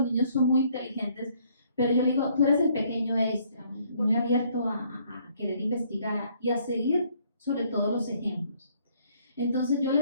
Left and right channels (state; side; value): inverted; both; correlation -0.65